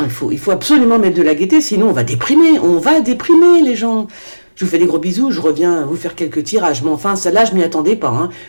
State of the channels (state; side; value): inverted; both; correlation -1.00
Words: Il faut absolument mettre de la gaieté, sinon on va déprimer. On va déprimer les gens. Je vous fais des gros bisous. Je reviens vous faire quelques tirages. Mais enfin, celle-là, je m'y attendais pas. Hein.